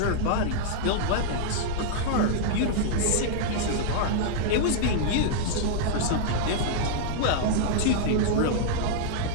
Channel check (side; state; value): both; different; correlation -0.02